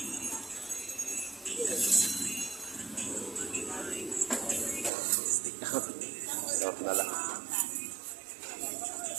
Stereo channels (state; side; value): drops out; left; at 4.9 s